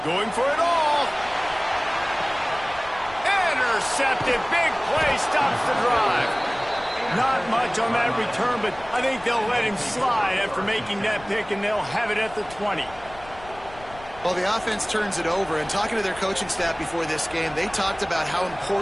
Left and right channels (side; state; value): left; noise; rumble, 20 dB below the sound